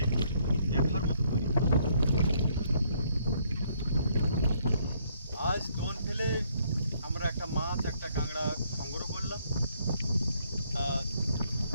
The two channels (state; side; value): inverted; both; correlation -0.68